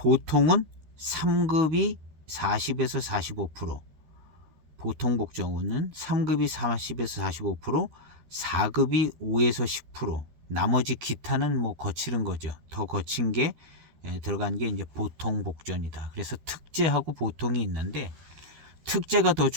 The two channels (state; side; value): late; left; 13 ms